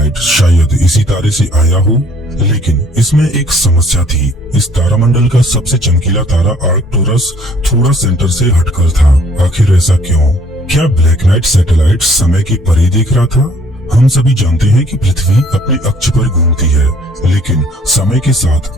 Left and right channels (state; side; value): normal; both; correlation 0.59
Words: शायद इसी तारे से आया हो, लेकिन इसमें एक समस्या थी। इस तारामंडल का सबसे चमकीला तारा आर्कटुरस थोड़ा सेंटर से हटकर था। आखिर ऐसा क्यों? क्या ब्लैक नाइट सैटेलाइट समय के परे देख रहा था? हम सभी जानते हैं कि पृथ्वी अपने अक्ष पर घूमती है, लेकिन समय के साथ